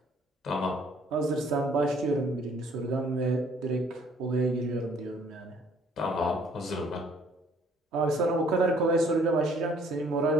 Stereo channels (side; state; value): both; normal; correlation 0.60